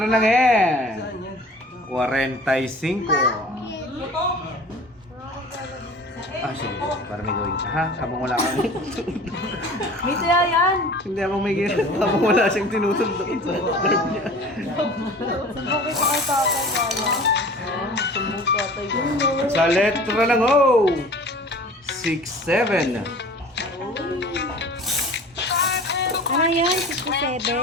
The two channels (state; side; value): normal; both; correlation 0.43